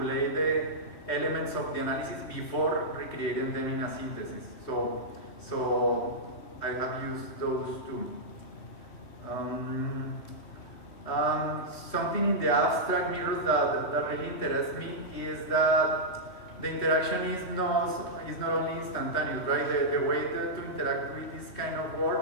the elements of the analysis before recreating them in a synthesis. So I have used those two. Something in the abstract mirrors that really interests me is that the interaction is not only instantaneous, right? The way to interact with this kind of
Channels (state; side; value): late; right; 3.2 ms